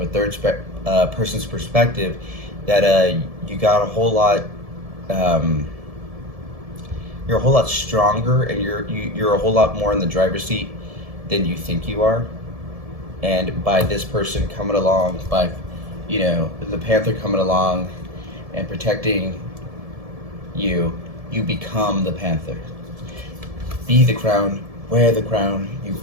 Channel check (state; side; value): late; left; 1.7 ms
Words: a third person's perspective, that you got a whole lot, you're a whole lot stronger, and you're a whole lot more in the driver's seat than you think you are. And by this person coming along, by the panther coming along and protecting you, you become the panther. Be the crown, wear the crown, you